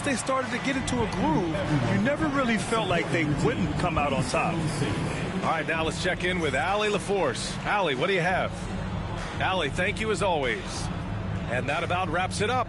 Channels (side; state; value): both; identical; correlation 1.00